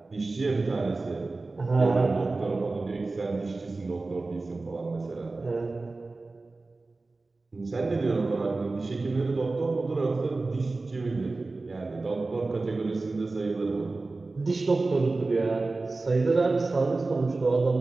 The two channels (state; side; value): quieter; left; 3.5 dB